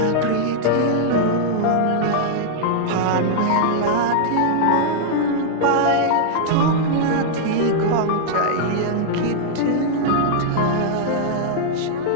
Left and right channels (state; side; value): different; both; correlation -0.01